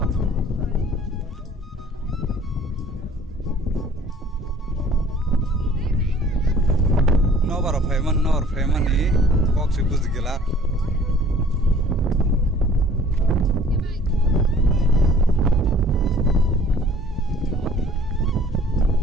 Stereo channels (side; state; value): both; normal; correlation 0.54